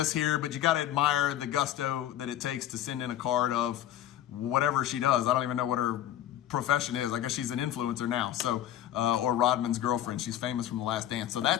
here, but you got to admire the gusto that it takes to send in a card of whatever she does. I don't even know what her profession is. I guess she's an influencer now. So, or Rodman's girlfriend. She's famous from The Last Dance. So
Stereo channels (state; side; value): quieter; right; 12.1 dB